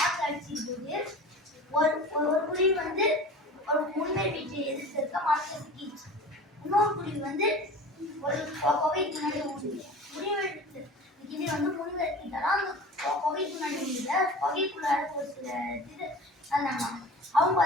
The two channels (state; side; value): normal; both; correlation 0.38